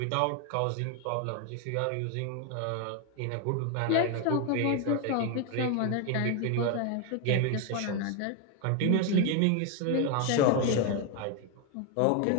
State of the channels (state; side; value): different; both; correlation 0.01